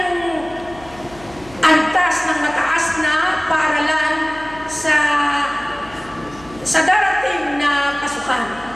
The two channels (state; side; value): noise; left; hum, 21 dB below the sound